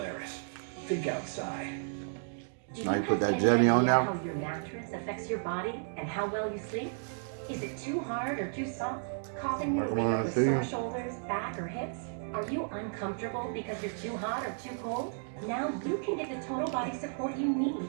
Think outside. Now you put that jelly on now? How your mattress affects your body and how well you sleep? Is it too hard or too soft? Causing you to wake up with sore shoulders, back, or hips? Are you uncomfortable because you're too hot or too cold? Now you can get the total body support you need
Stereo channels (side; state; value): left; silent; digital silence